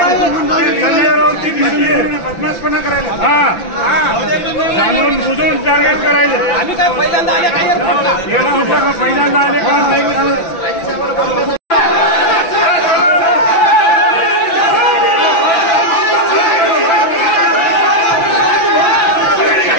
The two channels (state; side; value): late; right; 5.9 ms